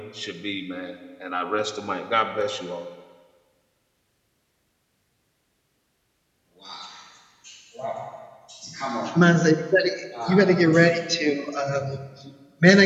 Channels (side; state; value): both; identical; correlation 1.00